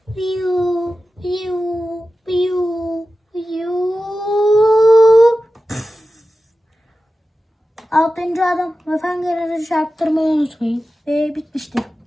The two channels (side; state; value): both; normal; correlation 0.93